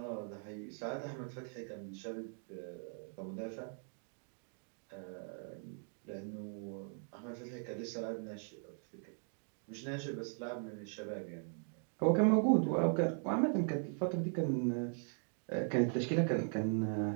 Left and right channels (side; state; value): left; silent; 51 dB below the other